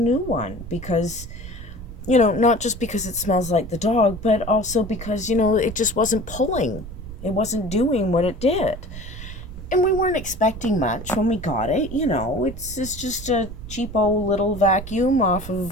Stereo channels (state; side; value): noise; right; rumble, 11 dB below the sound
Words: one because not just because it smells like the dog, but also because it just wasn't pulling. It wasn't doing what it did. And we weren't expecting much when we got it. It's just a cheapo little vacuum off